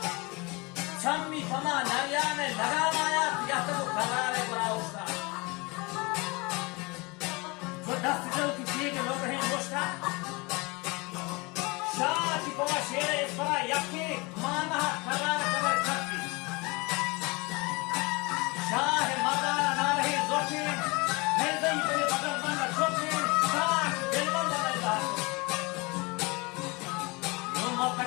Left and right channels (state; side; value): quieter; right; 26.5 dB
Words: छम्मी कमा नरिया में लगाम आया या तो वो करारे बड़ा उसका जो दस्त जो किसी के लोग हैं मुश्ता शाह की पवा शेरे इस बड़ा यकी माना करारे कबर करती शाह है मदाना ना रही जोशी नहीं दही तेरे बदल बंदा छोटी शाह दिल बंदा नहीं दार